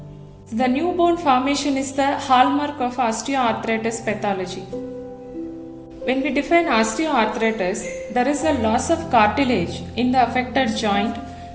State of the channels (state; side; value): identical; both; correlation 1.00